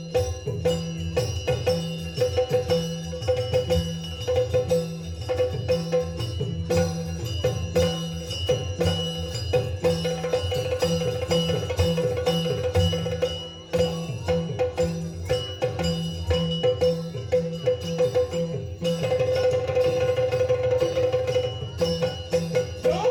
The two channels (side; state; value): both; identical; correlation 1.00